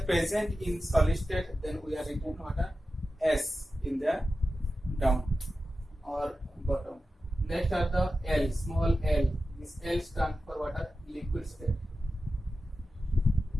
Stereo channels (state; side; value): normal; both; correlation 0.93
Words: present in solid state, then we are written water S in the down or bottom. Next are the L, small L. This L stands for water liquid state.